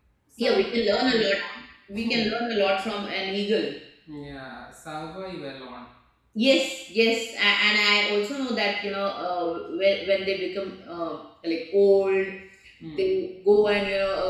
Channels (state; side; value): identical; both; correlation 1.00